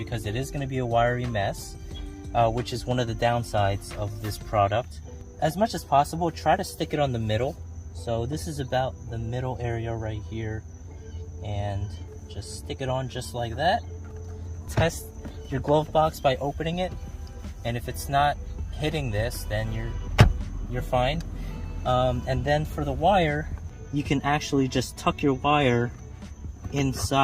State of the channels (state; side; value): identical; both; correlation 1.00